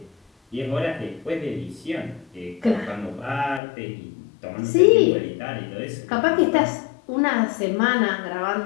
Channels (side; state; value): right; drops out; at 3.6 s